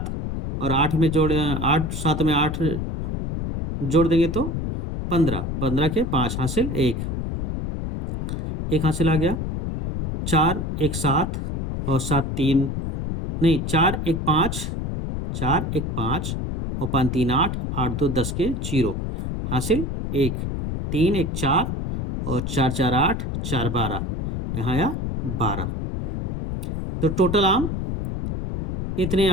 और 8 में 7 में 8 जोड़ देंगे तो 15, 15 के 5 हासिल 1 हासिल आ गया। 4 1 7 और 7 3 नहीं 4 1 5 और 5 3 8, 8 2 10 के 0 हासिल 1, 3 1 4 और 4 4 8, 4 12, यहाँ आया 12। तो टोटल आम इतने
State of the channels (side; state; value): left; noise; rumble, 3 dB below the sound